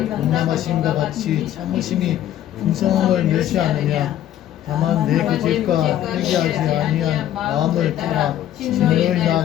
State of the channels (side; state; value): right; quieter; 11.9 dB